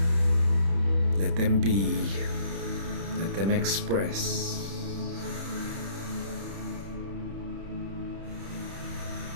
Let them be, let them express.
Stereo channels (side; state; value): left; late; 31 ms